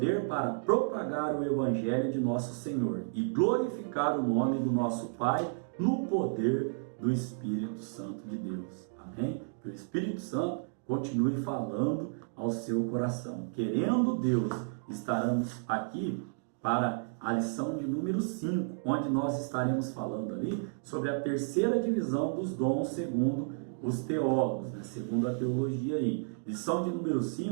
para propagar o Evangelho de nosso Senhor e glorificar o nome do nosso Pai no poder do Espírito Santo de Deus. Amém? Que o Espírito Santo continue falando ao seu coração. Querendo Deus, estaremos aqui para a lição de número 5, onde nós estaremos falando ali sobre a terceira divisão dos dons segundo os teólogos, segundo a teologia aí. Lição de número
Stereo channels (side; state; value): left; silent; digital silence